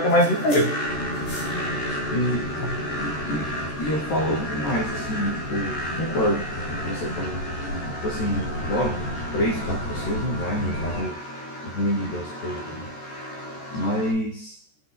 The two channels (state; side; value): late; right; 14 ms